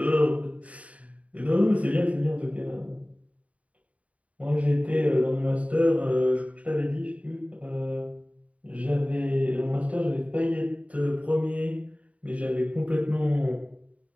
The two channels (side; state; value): left; late; 0.067 ms